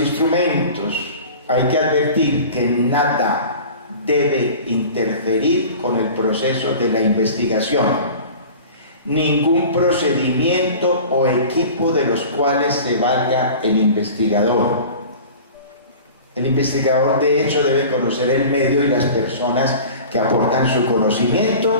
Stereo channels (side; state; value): both; inverted; correlation -0.39